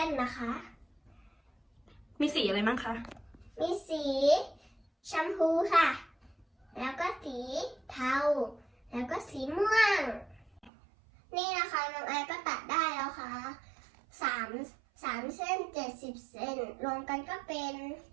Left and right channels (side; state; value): left; drops out; at 10.7 s